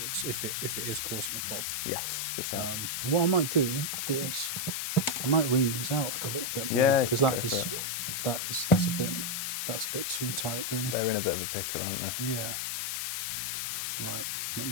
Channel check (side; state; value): left; noise; hiss, 1 dB below the sound